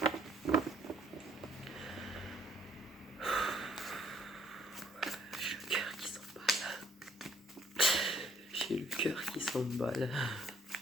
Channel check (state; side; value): normal; both; correlation 0.64